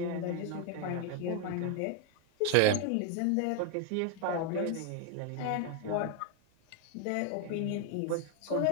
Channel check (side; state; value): both; different; correlation 0.01